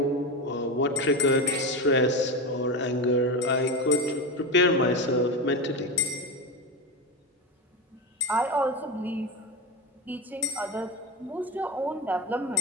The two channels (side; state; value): both; normal; correlation 0.19